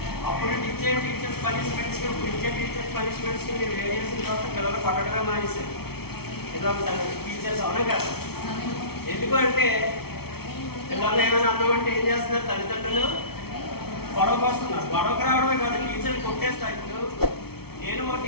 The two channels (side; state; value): right; late; 0.95 ms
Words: అప్పుడు టీచర్స్ పనిష్మెంట్స్కి, ఇప్పుడు టీచర్స్ పనిష్మెంట్స్కి మీరు వేరియేషన్ తర్వాత పిల్లలు కొట్టడమే మానేశారు. ఏదో టీచర్స్ అవునా కదా? ఎందుకు అంటే పిల్లలు ఏమైనా అన్నమంటే ఏం చేస్తున్నారు? తల్లిదండ్రులు గొడవకు వస్తున్నారు. గొడవకు రావడమే కాదు, టీచర్లు కొట్టేస్తారు. ఇప్పుడు నేను ఒక